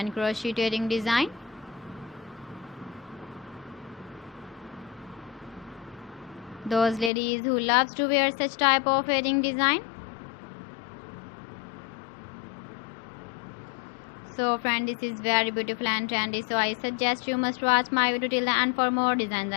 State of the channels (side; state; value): right; drops out; at 7.1 s